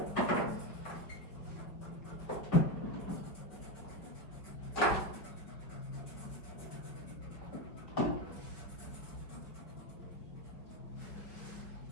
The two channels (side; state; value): right; late; 5.4 ms